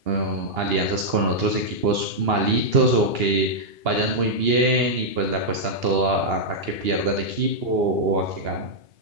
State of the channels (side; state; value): left; late; 2.8 ms